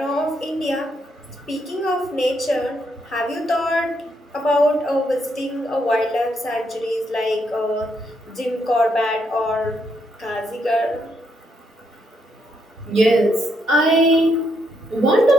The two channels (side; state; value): both; normal; correlation 0.77